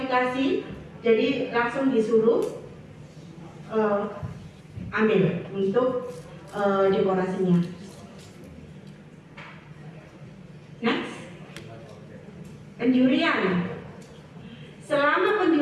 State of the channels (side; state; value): both; identical; correlation 1.00